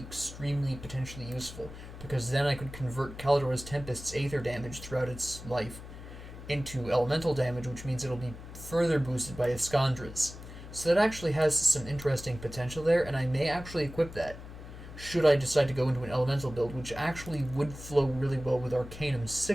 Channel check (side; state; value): left; noise; hum, 13 dB below the sound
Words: potentially useful, because then I could convert Caladora's Tempest's aether damage throughout its life into elemental damage, which means it'll be further boosted by Iskandra's. So that actually has some interesting potential there, and I may actually equip that, should I decide to go into an elemental build, which actually would flow really well with Arcanum's